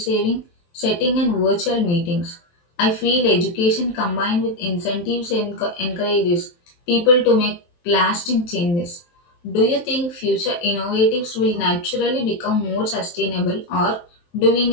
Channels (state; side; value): late; right; 23 ms